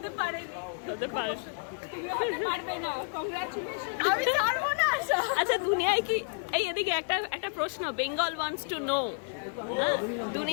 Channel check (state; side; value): silent; right; digital silence